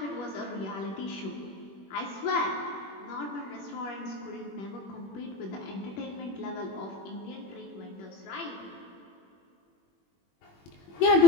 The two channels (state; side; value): late; right; 21 ms